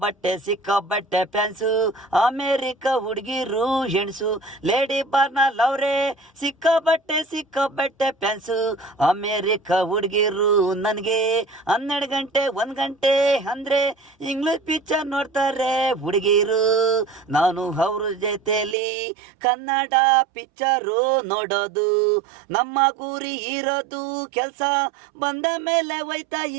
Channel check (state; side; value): drops out; left; at 18.8 s